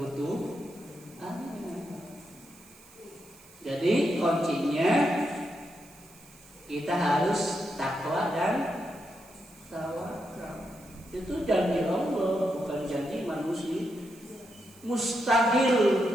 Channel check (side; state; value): right; noise; hiss, 24 dB below the sound